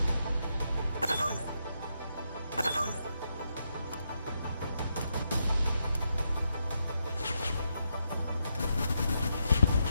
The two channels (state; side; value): inverted; both; correlation -0.82